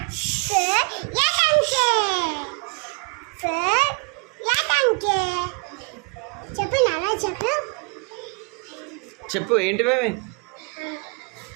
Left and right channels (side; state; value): left; quieter; 33.9 dB